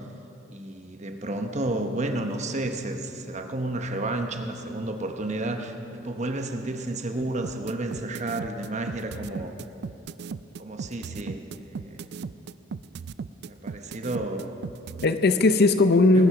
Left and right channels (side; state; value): both; normal; correlation 0.52